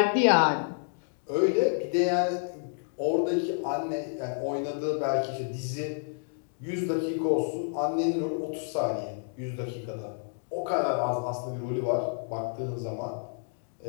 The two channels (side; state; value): right; silent; digital silence